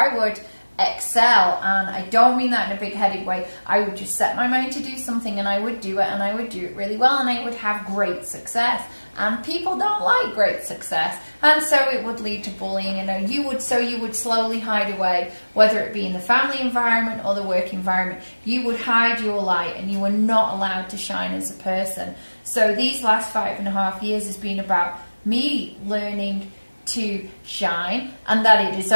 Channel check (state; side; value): inverted; both; correlation -1.00